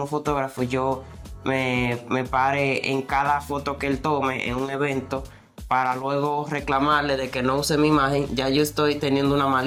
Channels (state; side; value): identical; both; correlation 1.00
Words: fotógrafo, yo me pare en cada foto que él tome en un evento para luego reclamarle de que no use mi imagen, ya yo estoy teniendo una